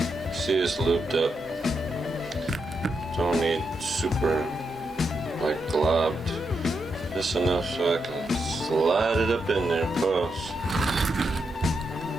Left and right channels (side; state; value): both; normal; correlation 0.83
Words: see it's looped up. Don't need super like globbed. Just enough so I can slide it up in there. Pause.